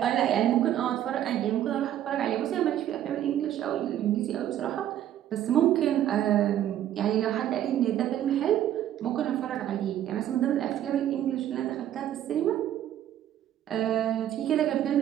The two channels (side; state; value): left; quieter; 11.5 dB